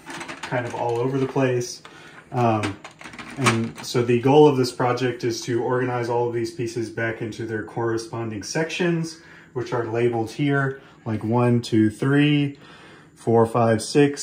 kind of all over the place. And so the goal of this project is to organize all of these pieces back into their corresponding sections, which are labeled here, like 1, 2, 3, 4, 5, 6,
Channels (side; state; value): both; identical; correlation 1.00